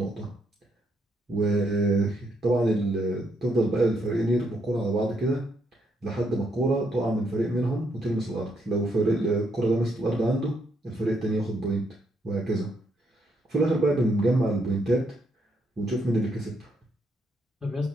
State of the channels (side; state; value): both; normal; correlation 0.75